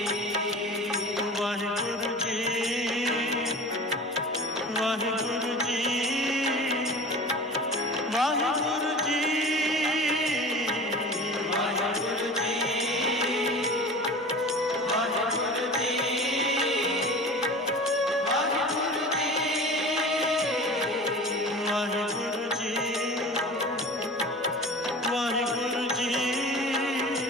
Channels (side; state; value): both; normal; correlation 0.37